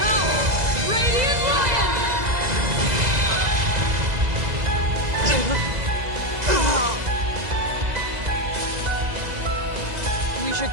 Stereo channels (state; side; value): late; left; 2.0 ms